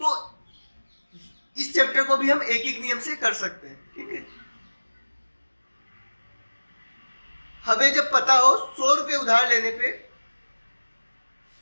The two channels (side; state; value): both; inverted; correlation -1.00